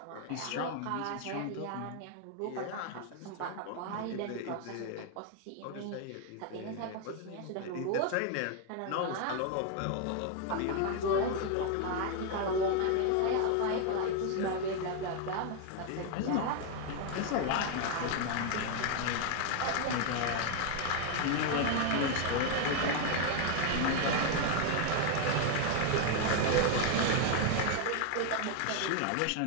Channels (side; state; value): both; different; correlation 0.00